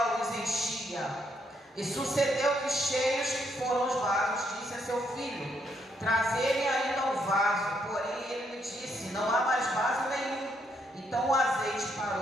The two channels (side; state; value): both; normal; correlation 0.74